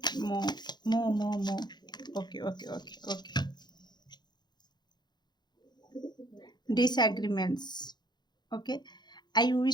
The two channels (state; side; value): late; right; 0.21 ms